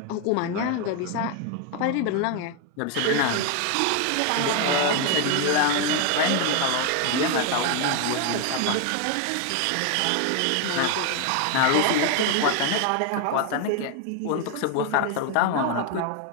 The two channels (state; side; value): different; both; correlation 0.01